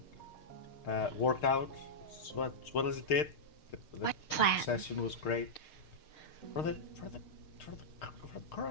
worked out as well as it did. What plan? The session was great. For the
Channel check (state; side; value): late; right; 6.5 ms